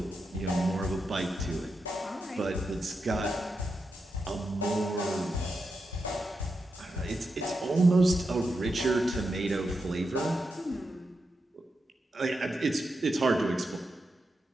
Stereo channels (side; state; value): both; normal; correlation 0.87